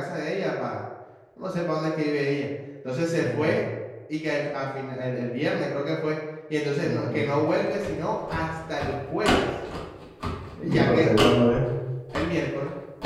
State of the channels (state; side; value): identical; both; correlation 1.00